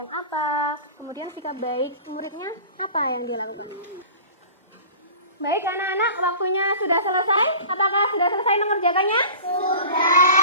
apa? Kemudian sikap baik muridnya apa yang dia lakukan? Baik anak-anak, waktunya sudah selesai. Apakah sudah selesai mengerjakannya?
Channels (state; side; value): inverted; both; correlation -0.40